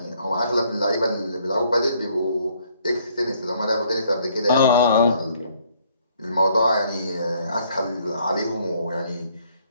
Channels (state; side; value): inverted; both; correlation -0.65